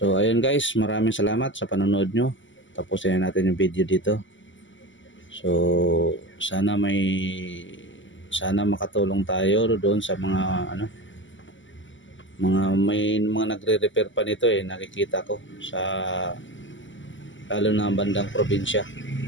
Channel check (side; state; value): right; late; 0.55 ms